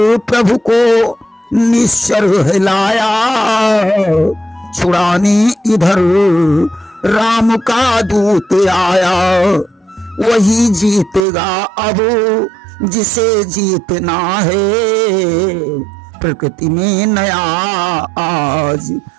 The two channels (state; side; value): drops out; left; at 11.2 s